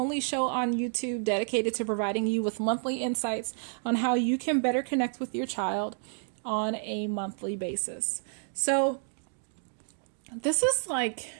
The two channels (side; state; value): left; silent; 58 dB below the other